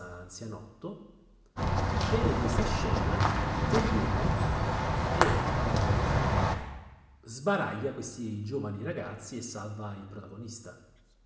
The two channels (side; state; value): both; identical; correlation 1.00